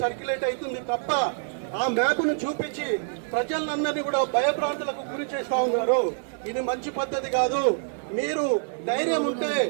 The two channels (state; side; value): silent; left; digital silence